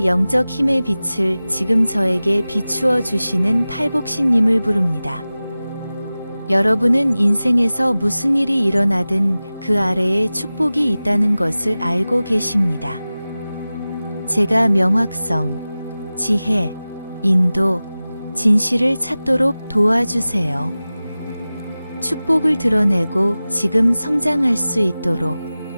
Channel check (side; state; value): both; inverted; correlation -0.97